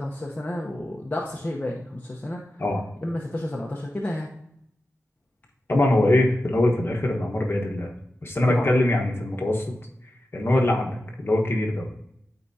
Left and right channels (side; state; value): both; normal; correlation 0.92